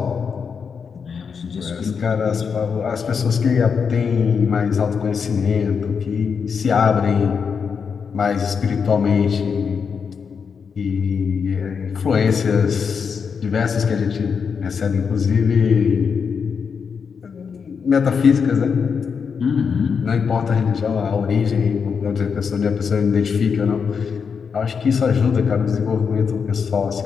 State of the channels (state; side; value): quieter; right; 6.1 dB